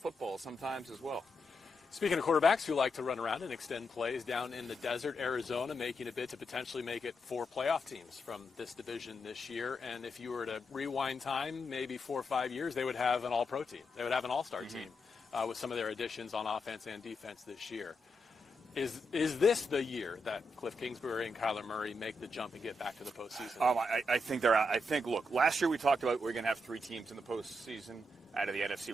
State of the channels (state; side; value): normal; both; correlation 0.83